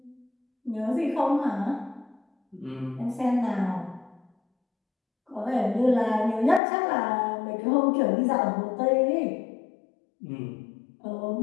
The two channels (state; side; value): drops out; right; at 6.6 s